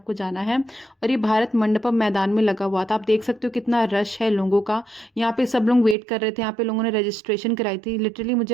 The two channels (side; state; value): left; drops out; at 6.0 s